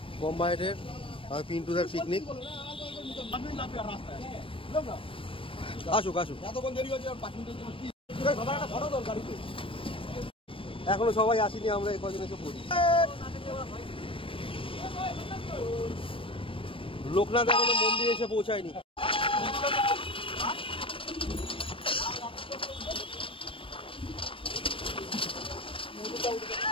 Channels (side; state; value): right; late; 0.25 ms